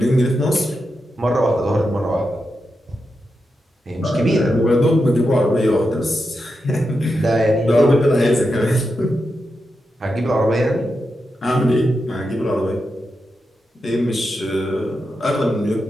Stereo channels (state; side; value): normal; both; correlation 0.87